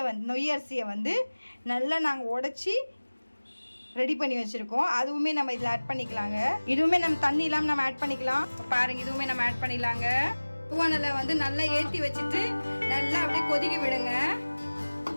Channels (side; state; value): both; inverted; correlation -1.00